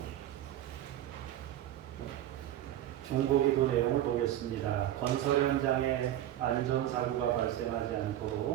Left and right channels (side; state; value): left; quieter; 12.6 dB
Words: 중보기도 내용을 보겠습니다. 건설 현장에 안전사고가 발생하지